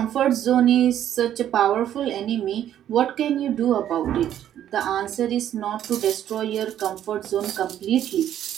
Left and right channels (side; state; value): left; quieter; 11.0 dB